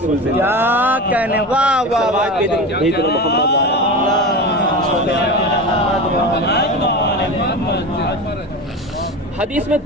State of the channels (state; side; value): normal; both; correlation 0.26